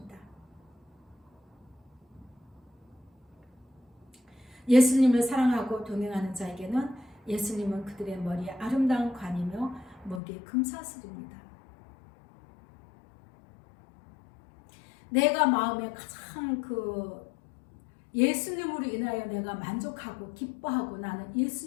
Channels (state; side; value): drops out; right; at 10.2 s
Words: 예수님을 사랑하고 동행하는 자에게는 예수님은 그들의 머리에 아름다운 관이며 목에 금사슬입니다. 내가 마음에 가장 예수님으로 인하여 내가 만족하고 기뻐하고 나는